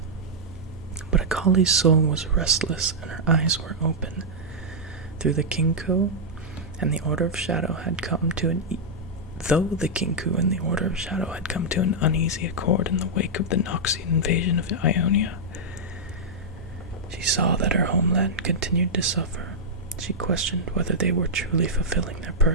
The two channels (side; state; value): both; normal; correlation -0.07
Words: But Akali's soul was restless and her eyes were open. Through the Kinku and the Order of Shadow had come to an uneasy accord in the wake of the Noxian invasion of Ionia, she saw that her homeland continued to suffer. She questioned whether they were truly fulfilling their